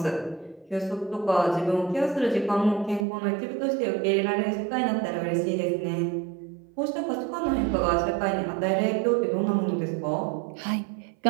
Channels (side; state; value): left; drops out; at 3.1 s